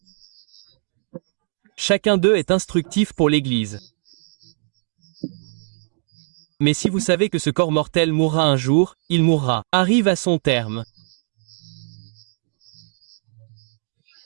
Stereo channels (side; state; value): left; silent; digital silence